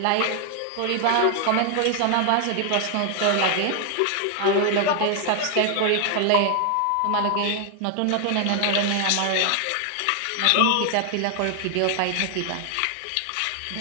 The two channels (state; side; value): different; both; correlation 0.00